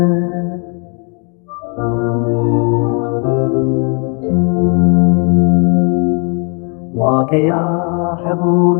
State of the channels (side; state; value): right; quieter; 36.3 dB